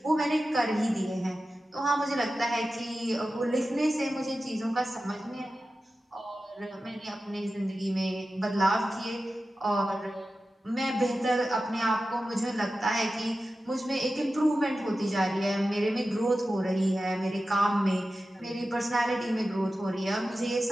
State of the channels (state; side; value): normal; both; correlation 0.93